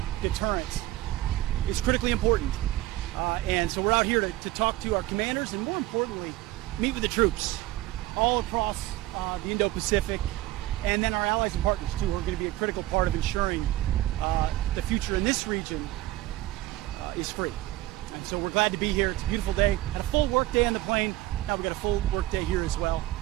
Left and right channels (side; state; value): left; quieter; 16.4 dB